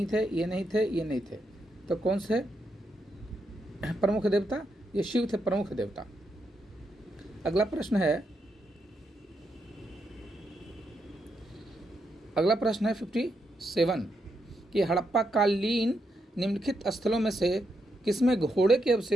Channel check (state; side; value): normal; both; correlation 0.81